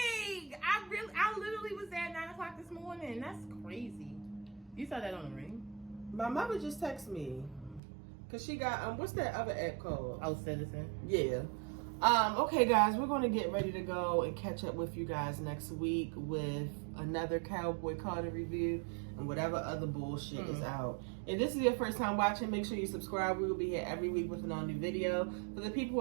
I literally was there at 9 o'clock this morning. That's crazy. You saw that on the ring? My mother just texted me because she got what's that other app called? Oh, Citizen. Yeah. Okay, guys, we're going to get ready to go and catch up with you guys next week with another Cowboy Carter review and whatever other bullshit is out. If this is your first time watching, make sure you subscribe. We will be here every week with an all-new video. For the people who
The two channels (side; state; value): left; drops out; at 7.8 s